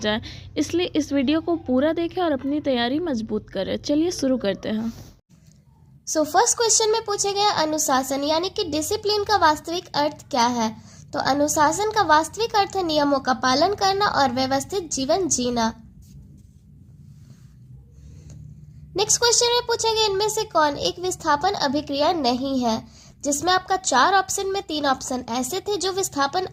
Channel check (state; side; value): identical; both; correlation 1.00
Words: इसलिए इस वीडियो को पूरा देखें और अपनी तैयारी मजबूत करें। चलिए शुरू करते हैं। फर्स्ट क्वेश्चन में पूछे गए अनुशासन यानी कि डिसिप्लिन का वास्तविक अर्थ क्या है। तो अनुशासन का वास्तविक अर्थ है नियमों का पालन करना और व्यवस्थित जीवन जीना। नेक्स्ट क्वेश्चन में पूछे गए इनमें से कौन एक विस्थापन अभिक्रिया नहीं है, जिसमें आपका 4 ऑप्शन में 3 ऑप्शन ऐसे थे जो विस्थापन